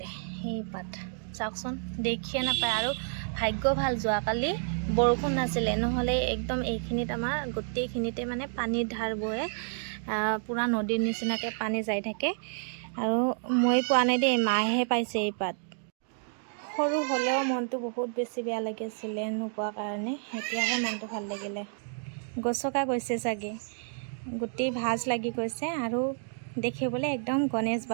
সেই পাত চাওকচোন, দেখিয়ে নাপায়। আৰু ভাগ্য ভাল যোৱাকালি বৰষুণ নাছিলে, নহ'লে একদম এইখিনিত আমাৰ গোটেইখিনিতে মানে পানীৰ ধাৰ বয়ে, পূৰা নদীৰ নিচিনাকৈ পানী যাই থাকে। আৰু মই পোৱা নাই দেই, মায়েহে পাইছে এই পাত। সৰু হ'লেও মনটো বহুত বেছি বেয়া লাগিছিলে নোপোৱাৰ কাৰণে। এতিয়াহে মনটো ভাল লাগিলে। গছকা গৈছে চাগে, গোটেই ভাজ লাগি গৈছে। আৰু দেখিবলৈ একদম গণেশ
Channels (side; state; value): left; silent; 58 dB below the other